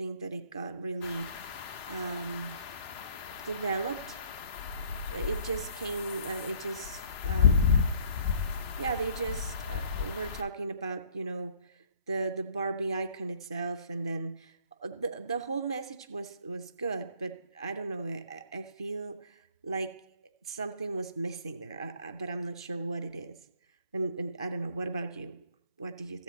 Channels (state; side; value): inverted; both; correlation -0.58